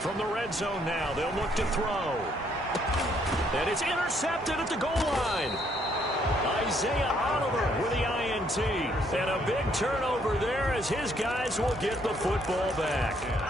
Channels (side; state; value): both; normal; correlation 0.69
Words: From the red zone now, they'll look to throw. And it's intercepted at the goal line. Isaiah Oliver with the INT. And a big turnover there as his guys will get the football back.